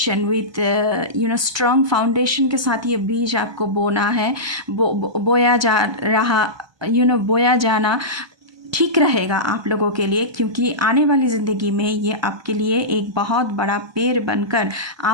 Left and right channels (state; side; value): late; left; 1.2 ms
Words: with strong foundation के साथ ये बीज आपको बोना है। बोया जाना ठीक रहेगा आप लोगों के लिए, क्योंकि आने वाली ज़िंदगी में ये आपके लिए एक बहुत बड़ा पेड़ बनकर